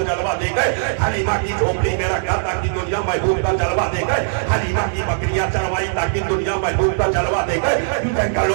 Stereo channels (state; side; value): silent; left; 62 dB below the other